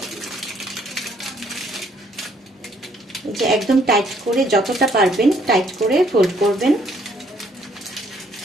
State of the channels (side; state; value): both; normal; correlation 0.66